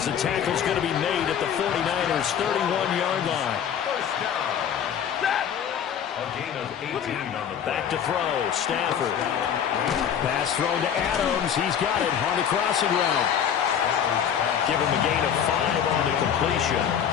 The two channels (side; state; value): right; quieter; 8.6 dB